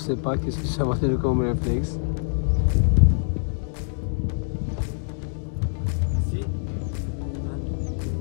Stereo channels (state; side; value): silent; right; digital silence